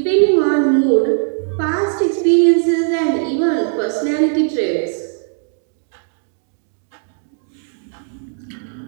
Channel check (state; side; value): silent; left; digital silence